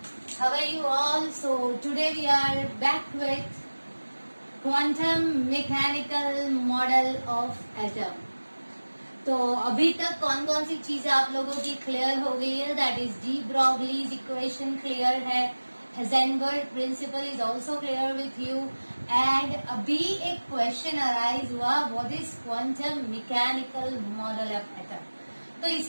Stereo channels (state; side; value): inverted; both; correlation -1.00